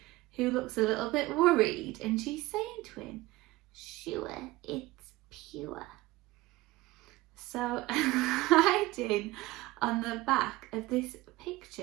who looks a little bit worried, and she's saying to him, "Sure, it's pure." So hiding on the back of this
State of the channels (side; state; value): left; quieter; 19.2 dB